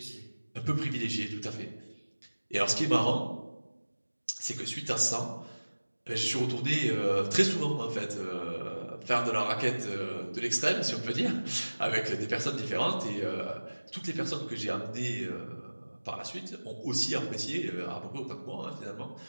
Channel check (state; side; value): inverted; both; correlation -1.00